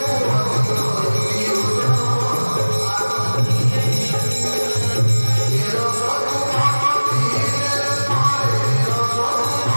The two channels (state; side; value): inverted; both; correlation -1.00